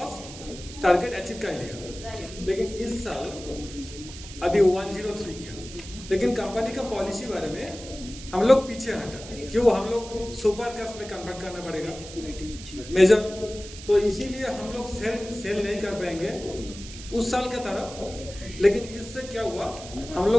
टारगेट अचीव कर लिया, लेकिन इस साल अभी 103 किया। लेकिन कंपनी का पॉलिसी बारे में हम लोग पीछे हटा, क्यों? हम लोग सुपर कास्ट में कन्वर्ट करना पड़ेगा मेजर, तो इसीलिए हम लोग सेल नहीं कर पाएंगे उस साल के तरफ। लेकिन इससे क्या हुआ, हम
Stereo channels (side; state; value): right; noise; hiss, 14 dB below the sound